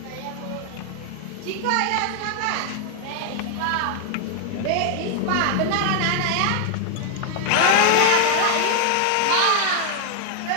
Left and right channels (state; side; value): different; both; correlation 0.00